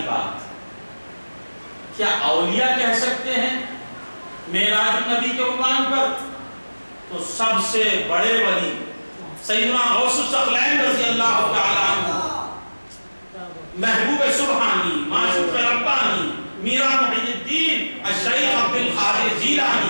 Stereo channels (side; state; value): both; inverted; correlation -1.00